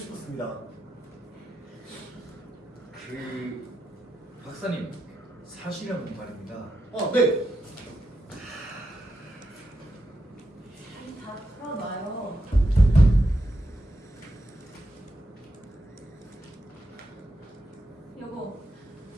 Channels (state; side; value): normal; both; correlation 0.85